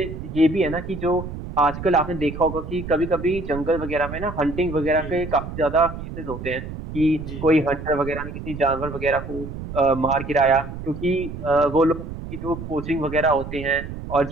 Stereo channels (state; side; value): noise; right; rumble, 9 dB below the sound